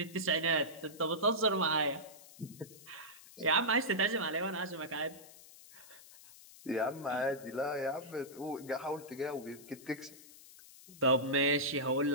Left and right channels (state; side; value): noise; left; hiss, 20 dB below the sound